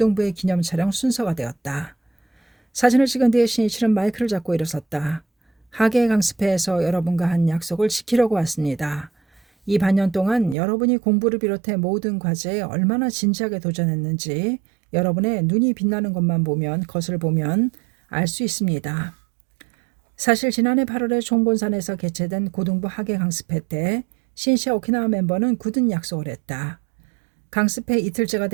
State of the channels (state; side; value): drops out; left; at 10.6 s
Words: 기념 촬영 순서가 되었다. 사진을 찍은 뒤에 신이치는 마이크를 잡고 일어섰다. 하계 강습회에서 여러분과 한 약속을 지키려고 왔습니다. 이 반년 동안 여러분이 공부를 비롯해 모든 과제에 얼마나 진지하게 도전했는지 여러분의 눈이 빛나는 것을 보면 알 수 있습니다. 사실 지난해 8월에 총본산에서 개최된 고등부 하계 강습회 때 신이치와 오키나와 멤버는 굳은 약속을 했다. 강습회 이틀째가